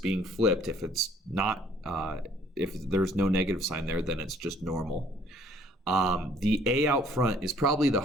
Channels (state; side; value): normal; both; correlation 0.59